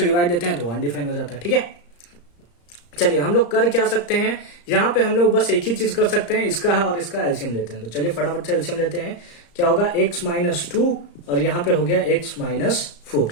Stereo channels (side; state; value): right; late; 35 ms